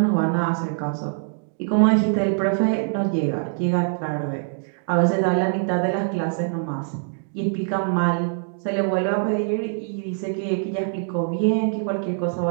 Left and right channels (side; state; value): left; silent; digital silence